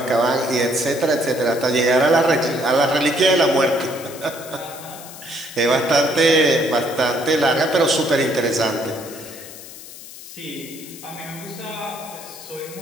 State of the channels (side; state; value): left; noise; hiss, 15 dB below the sound